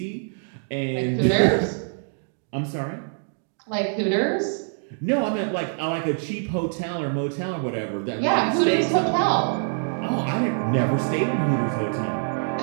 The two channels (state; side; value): silent; left; 62 dB below the other